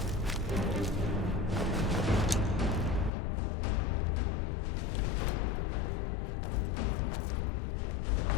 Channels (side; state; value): right; drops out; at 3.1 s